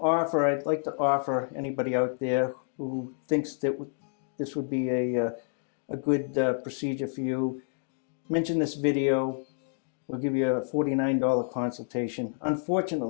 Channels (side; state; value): right; silent; digital silence